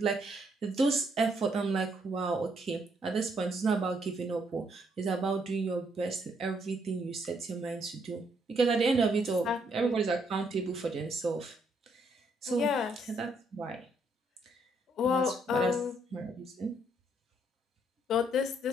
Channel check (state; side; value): normal; both; correlation 0.72